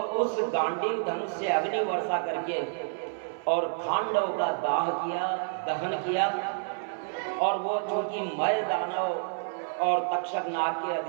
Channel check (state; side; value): silent; left; 56 dB below the other